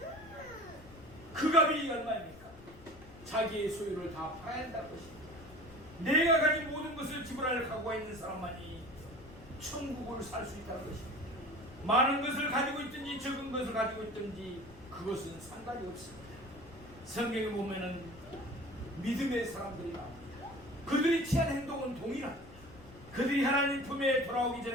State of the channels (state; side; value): noise; left; rumble, 19 dB below the sound